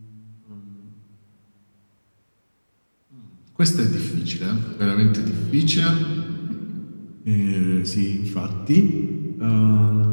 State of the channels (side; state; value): both; inverted; correlation -1.00